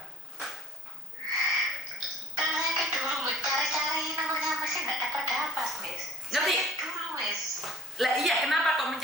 Karena saya kan dulu cari-cari nomornya Mas, nggak dapat, Mas. Ngerti? Dulu, Mas. Lah iya, kenapa kok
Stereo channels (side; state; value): both; normal; correlation 0.48